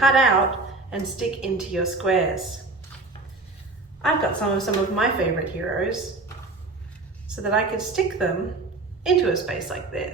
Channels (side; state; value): left; quieter; 3.5 dB